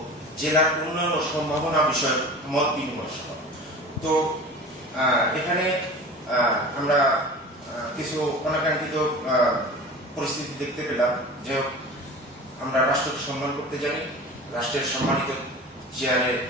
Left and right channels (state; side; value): normal; both; correlation 0.37